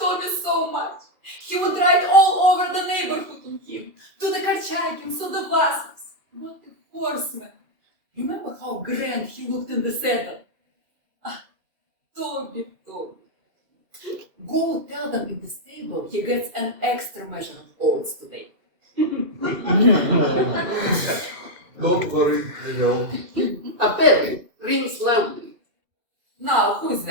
so much. He would ride all over the neighborhood on him, to the Korchagins, to the Vasils. What a horseman! Remember how grand he looked in the saddle? Ah, Toby. Go tell them in the stable he gets an extra measure of oats today. Don't worry, I will. A bell rings loudly. Now, who is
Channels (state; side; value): late; left; 2.6 ms